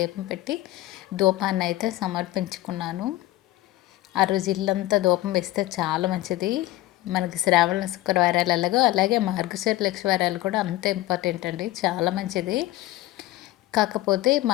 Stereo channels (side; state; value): right; quieter; 16.8 dB